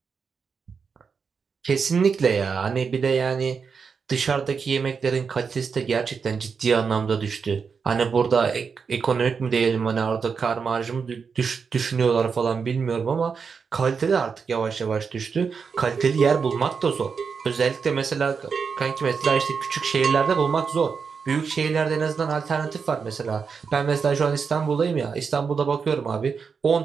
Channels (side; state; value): left; quieter; 5.7 dB